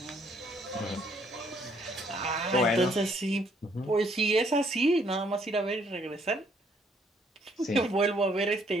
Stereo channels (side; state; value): both; normal; correlation 0.67